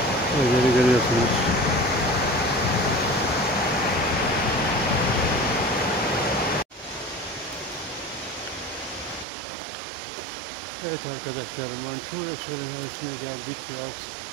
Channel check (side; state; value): left; drops out; at 9.2 s